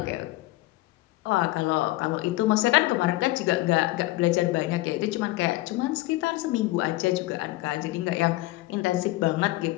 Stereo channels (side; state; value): right; quieter; 18.9 dB